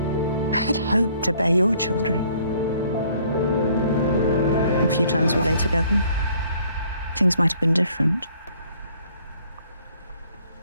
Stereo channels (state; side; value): inverted; both; correlation -0.61